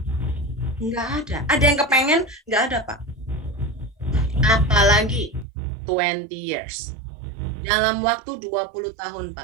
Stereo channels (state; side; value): drops out; left; at 5.5 s